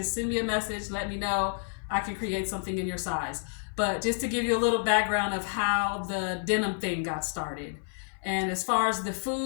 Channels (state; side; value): silent; right; 57 dB below the other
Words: send me a message. Let me know. I can create something in your size. But just to give you a little background of how the denim thing got started. And as far as the